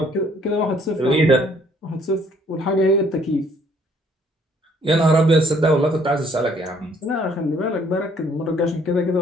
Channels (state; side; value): normal; both; correlation 0.62